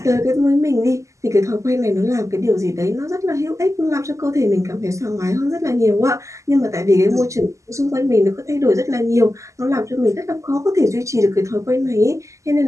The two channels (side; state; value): left; late; 0.15 ms